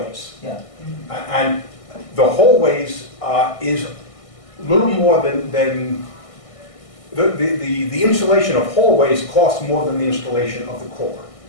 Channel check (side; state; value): right; late; 1.6 ms